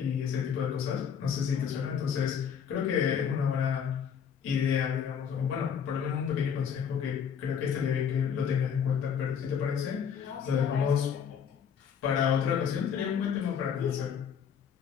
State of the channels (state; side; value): quieter; right; 7.6 dB